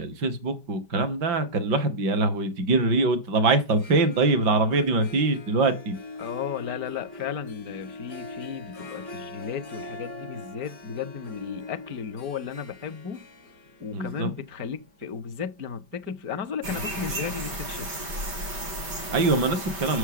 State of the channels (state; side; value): late; left; 5.1 ms